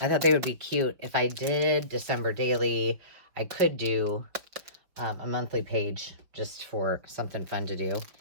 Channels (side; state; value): left; late; 5.6 ms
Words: thought they would be cute. If I did December daily, I could do a monthly page just for something fun to do.